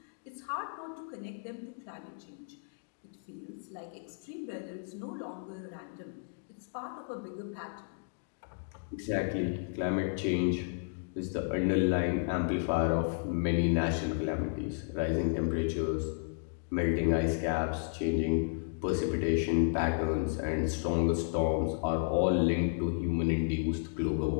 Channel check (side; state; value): right; silent; digital silence